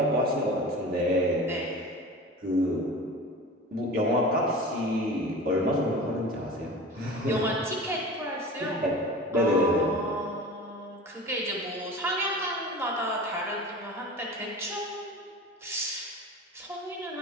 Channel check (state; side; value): normal; both; correlation 0.35